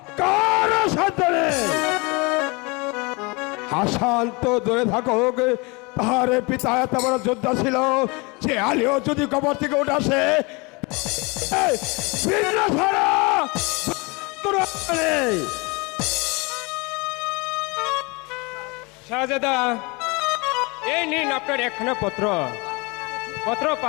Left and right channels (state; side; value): quieter; right; 27.4 dB